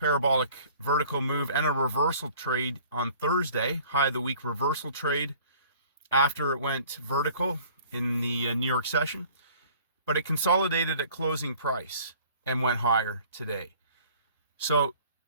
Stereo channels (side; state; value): both; inverted; correlation -0.51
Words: vertical move and a reversal trade on Thursday, high of the week reversal trade after it went vertical in the New York session. But it consolidated at closing price and went higher today. So